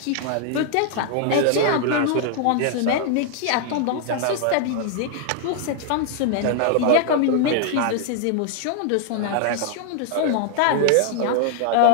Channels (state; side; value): different; both; correlation 0.00